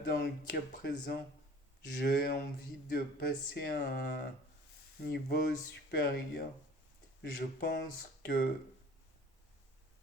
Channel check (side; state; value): both; normal; correlation 0.48